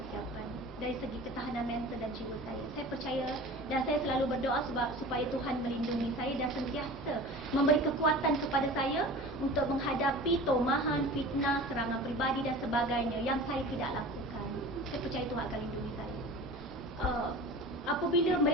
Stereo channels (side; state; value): both; normal; correlation 0.37